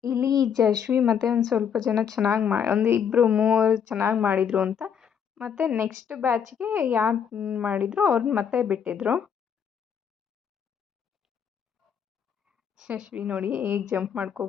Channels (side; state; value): right; quieter; 7.7 dB